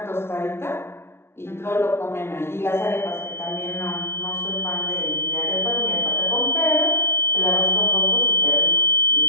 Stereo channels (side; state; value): right; late; 0.12 ms